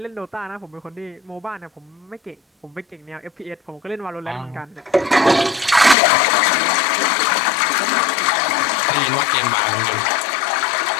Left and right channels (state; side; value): drops out; right; at 6.0 s